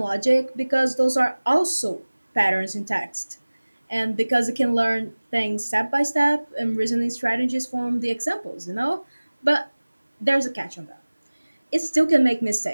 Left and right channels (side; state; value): both; inverted; correlation -1.00